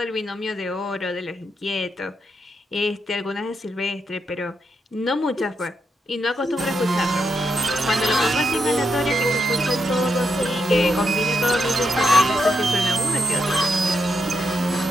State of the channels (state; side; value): normal; both; correlation 0.83